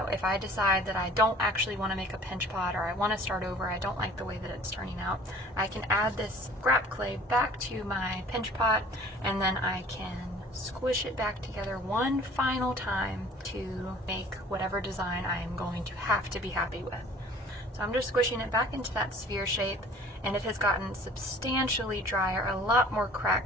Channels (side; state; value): both; normal; correlation 0.49